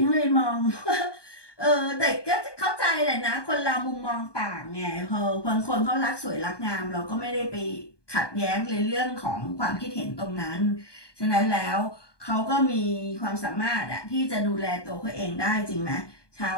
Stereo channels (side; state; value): right; late; 1.2 ms